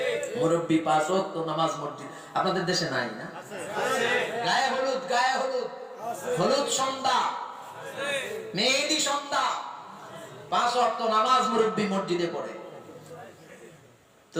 মুরব্বি 5 ওয়াক্ত নামাজ মসজিদ আপনাদের দেশে নাই না? গায়ে হলুদ, গায়ে হলুদ, হলুদ সন্ধ্যা, মেহেদি সন্ধ্যা, 5 ওয়াক্ত নামাজ মুরব্বি মসজিদে পড়ে। তো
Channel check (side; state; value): both; identical; correlation 1.00